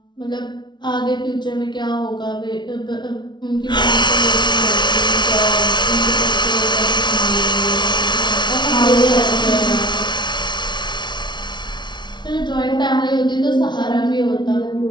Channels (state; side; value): late; right; 0.21 ms